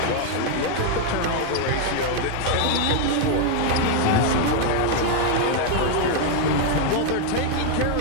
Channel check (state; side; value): different; both; correlation 0.00